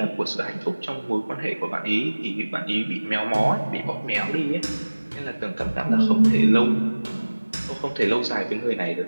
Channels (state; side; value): inverted; both; correlation -1.00